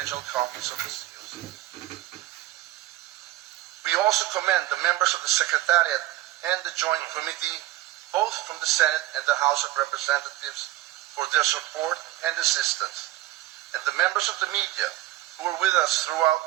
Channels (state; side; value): quieter; left; 15.7 dB